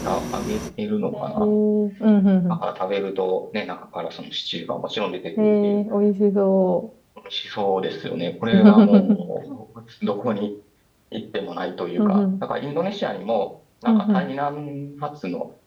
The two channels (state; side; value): identical; both; correlation 1.00